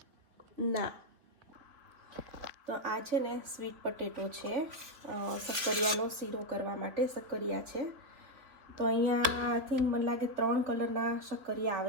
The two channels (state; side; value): late; left; 3.6 ms